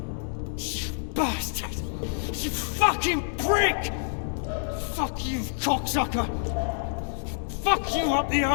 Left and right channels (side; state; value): right; silent; digital silence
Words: Bastard! You fucking prick! Fuck you, cocksucker! Fuck you up the